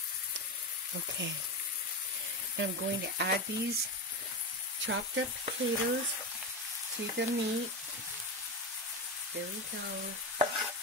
Okay, now I'm going to add these chopped up potatoes to the meat. There we go.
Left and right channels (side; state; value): both; normal; correlation 0.17